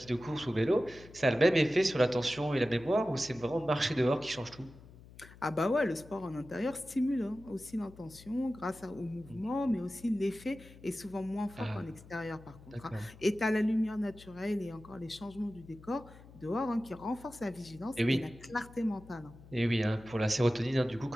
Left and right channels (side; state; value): left; noise; hum, 20 dB below the sound